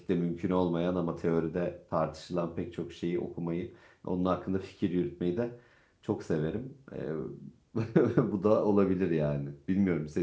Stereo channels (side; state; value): both; identical; correlation 1.00